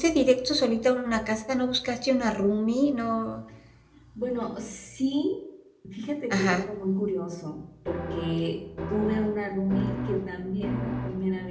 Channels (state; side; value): identical; both; correlation 1.00